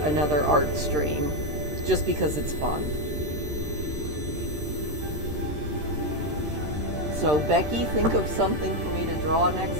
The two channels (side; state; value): left; late; 13 ms